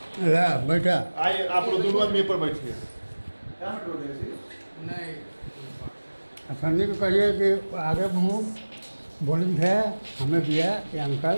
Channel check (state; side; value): inverted; both; correlation -1.00